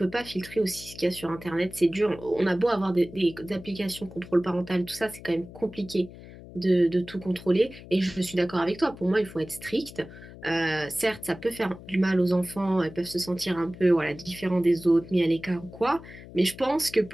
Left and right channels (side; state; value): left; noise; hum, 17 dB below the sound